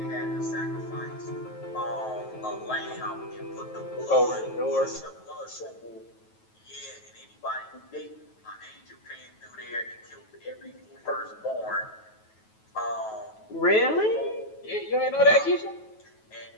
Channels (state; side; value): late; right; 9.3 ms